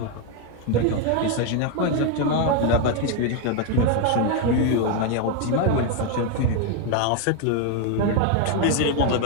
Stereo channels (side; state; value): both; different; correlation 0.01